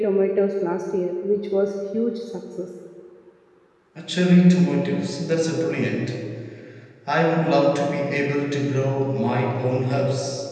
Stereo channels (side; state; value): both; identical; correlation 1.00